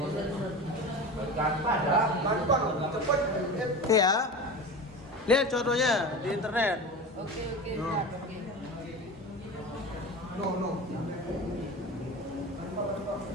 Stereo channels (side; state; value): both; normal; correlation 0.30